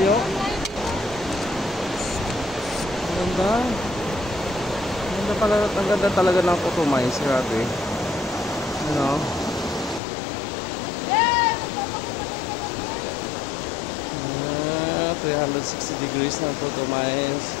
Ang ganda. Ang ganda talaga ng Cotomines, grabe. Ano? 360 degrees ng Cotomines.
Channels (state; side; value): drops out; right; at 10.0 s